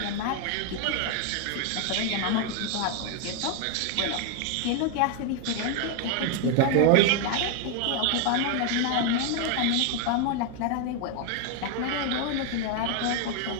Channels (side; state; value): both; different; correlation 0.01